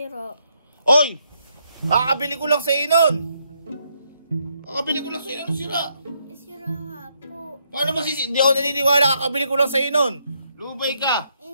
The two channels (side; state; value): both; inverted; correlation -0.75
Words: Oy! Kakabili ko lang sa inon! Kakabili ko lang sa inon, sira. Sira nga po. Paano masisi? Hindi ako naniniwala, kakabili ko lang sa inon. Lubay ka.